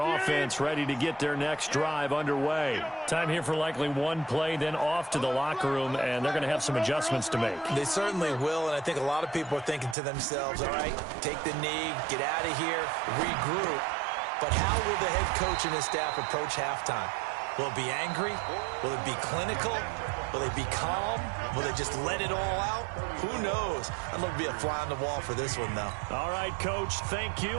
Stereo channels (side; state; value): left; drops out; at 10.0 s